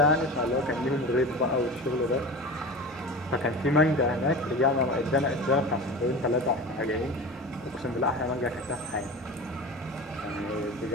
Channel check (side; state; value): both; normal; correlation 0.32